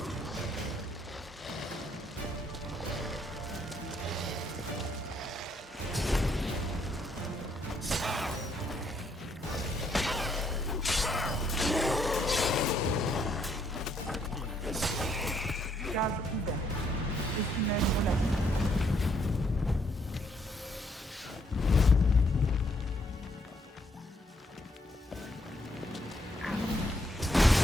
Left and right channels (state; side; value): normal; both; correlation 0.72